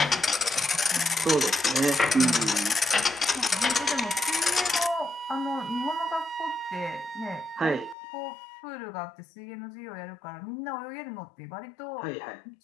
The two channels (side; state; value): right; drops out; at 8.0 s